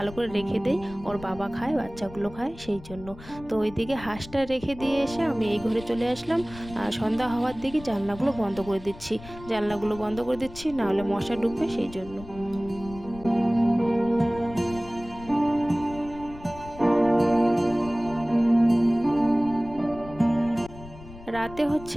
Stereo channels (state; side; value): noise; left; rumble, 16 dB below the sound